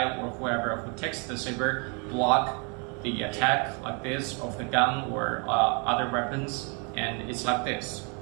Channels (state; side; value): quieter; left; 34.7 dB